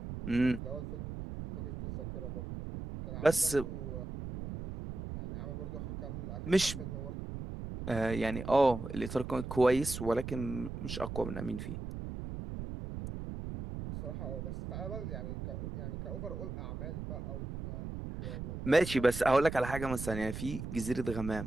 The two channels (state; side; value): noise; right; rumble, 7 dB below the sound